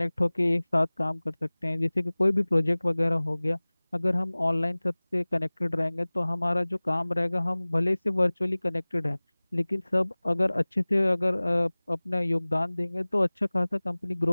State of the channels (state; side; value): inverted; both; correlation -1.00